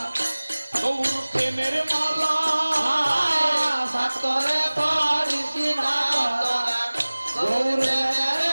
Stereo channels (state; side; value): inverted; both; correlation -1.00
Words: গৌর প্রেমের মালা সাত করে পরিসি না তোরা গৌর প্রেমের